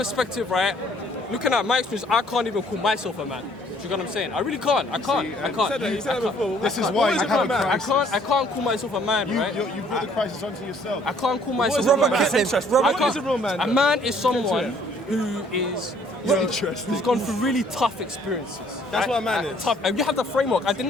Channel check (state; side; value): normal; both; correlation 0.61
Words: right, looking at my experience, I can't even call myself a man. Do you know what I'm saying? I really can't. I can't. This is why you have a crisis. I can't call myself a man, right? You brought the crisis onto yourself. I can't call myself Robert a man. Kitlin. I can't- A man is someone who is who's gone through really tough experiences. That's what a man is. Tough. And you have the framework. Didn't